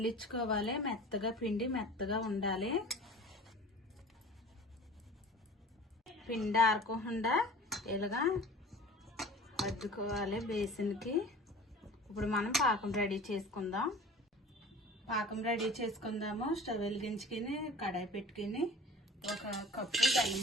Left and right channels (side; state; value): both; normal; correlation 0.41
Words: పిండి మెత్తగా ఉండాలి. పిండి ఆరకుండా ఇలాగా అద్దుకోవాలి బేసిన్కి. ఇప్పుడు మనం పాకం రెడీ చేసుకుందాము. స్టవ్ వెలిగించుకుని కడాయి పెట్టుకుని 1 కప్పు బెల్లం